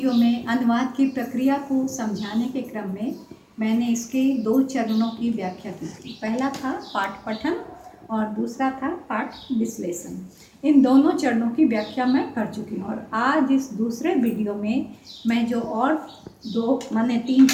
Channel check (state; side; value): identical; both; correlation 1.00